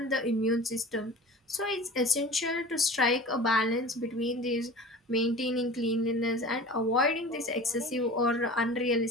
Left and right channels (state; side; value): normal; both; correlation 0.39